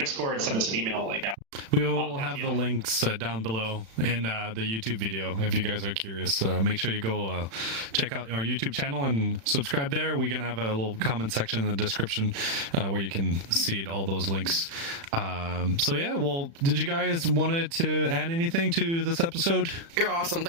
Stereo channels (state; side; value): late; left; 36 ms